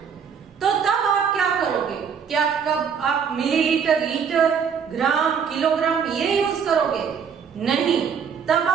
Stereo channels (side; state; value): left; quieter; 7.0 dB